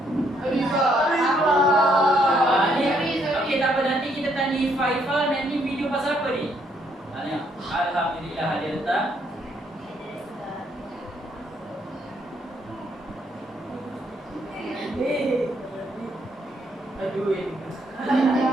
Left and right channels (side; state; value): both; normal; correlation 0.71